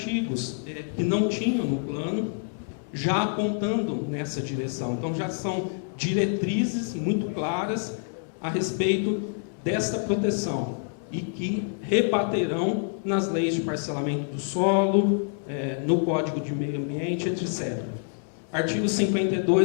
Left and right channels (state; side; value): silent; right; digital silence